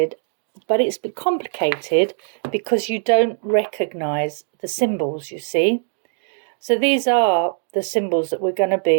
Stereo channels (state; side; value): silent; left; digital silence